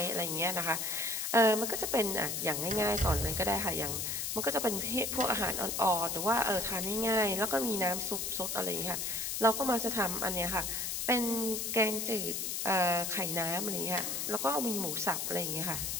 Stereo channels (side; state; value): left; noise; hiss, 2 dB below the sound